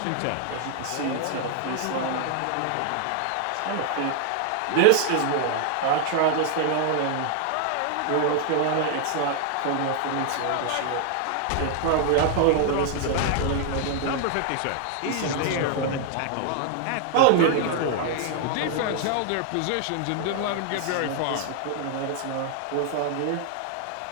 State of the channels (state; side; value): different; both; correlation 0.00